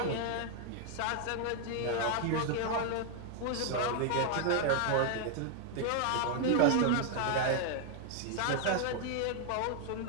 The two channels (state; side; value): different; both; correlation 0.00